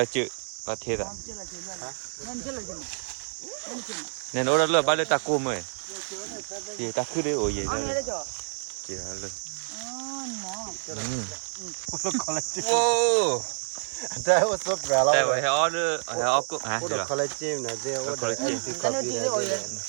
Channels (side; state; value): left; silent; digital silence